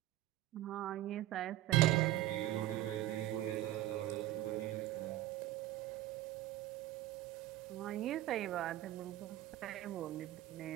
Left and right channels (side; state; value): left; quieter; 14.9 dB